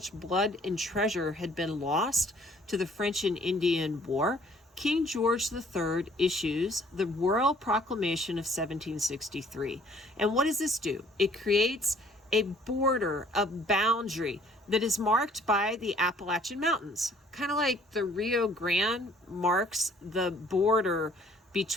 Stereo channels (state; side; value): normal; both; correlation 0.58